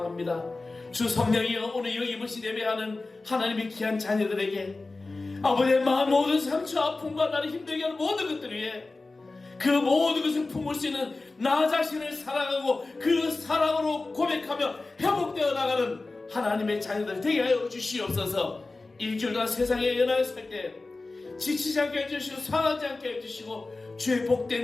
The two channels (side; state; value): right; quieter; 3.4 dB